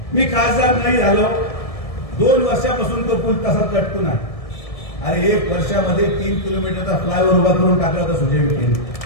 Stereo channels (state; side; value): late; right; 1.7 ms